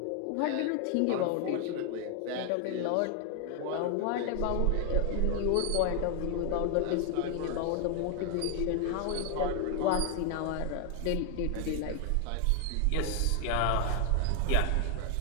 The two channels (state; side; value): different; both; correlation 0.00